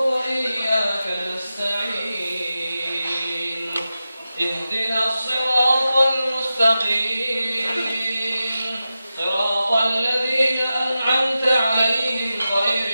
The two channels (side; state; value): both; inverted; correlation -0.92